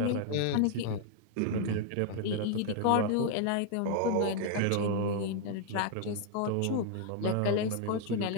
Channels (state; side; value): different; both; correlation 0.00